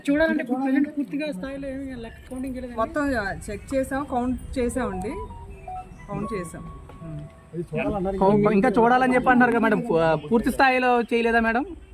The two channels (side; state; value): both; identical; correlation 1.00